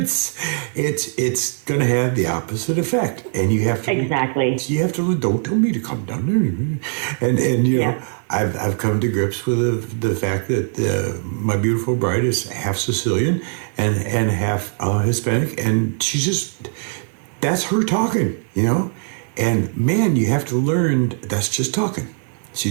It's going to have the opposite effect, and you have to You have to don't tell me to calm down, and I've come to grips with the fact that my beautiful bride is half Sicilian and half Hispanic, and that's her talking, and man, you have to learn that's just talking. It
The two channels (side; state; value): left; silent; 61 dB below the other